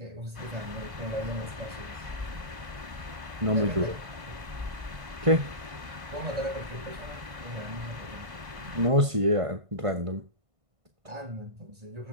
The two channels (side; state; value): left; late; 1.5 ms